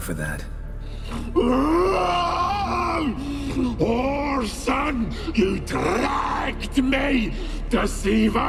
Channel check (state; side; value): identical; both; correlation 1.00